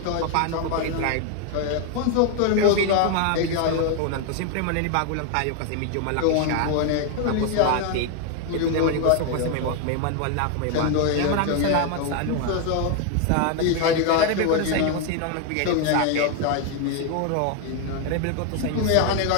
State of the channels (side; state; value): both; different; correlation 0.01